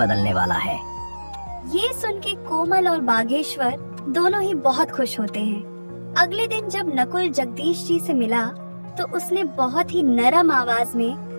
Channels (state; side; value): inverted; both; correlation -1.00